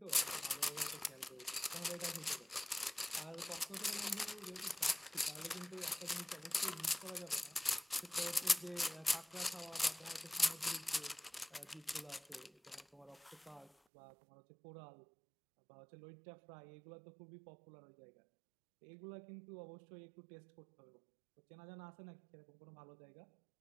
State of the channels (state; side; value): drops out; left; at 13.7 s